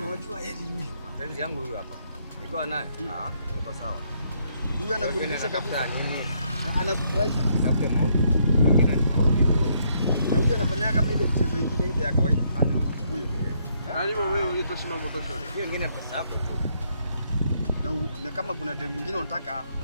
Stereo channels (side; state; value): both; inverted; correlation -0.72